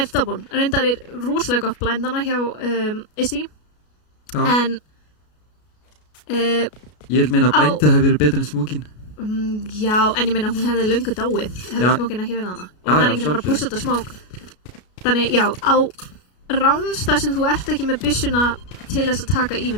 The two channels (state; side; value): late; right; 33 ms